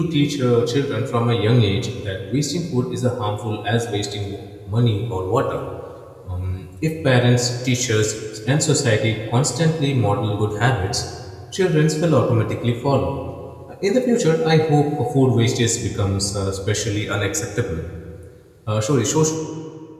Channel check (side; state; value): both; identical; correlation 1.00